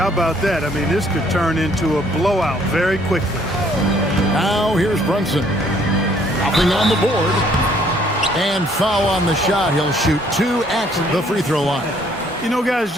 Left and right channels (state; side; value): normal; both; correlation 0.63